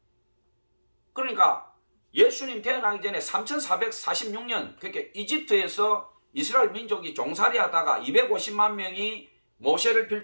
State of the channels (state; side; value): inverted; both; correlation -1.00